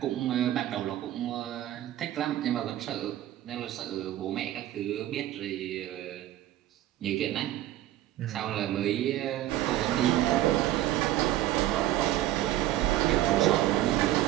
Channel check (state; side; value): quieter; left; 14.1 dB